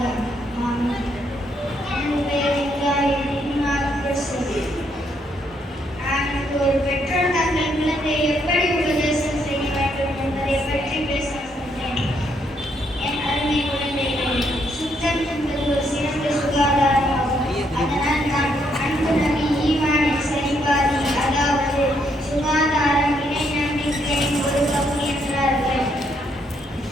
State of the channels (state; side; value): normal; both; correlation 0.74